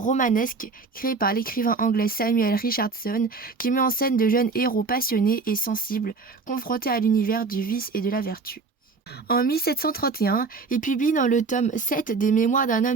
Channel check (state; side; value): quieter; left; 4.4 dB